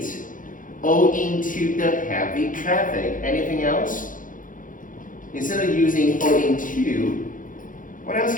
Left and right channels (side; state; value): right; late; 0.39 ms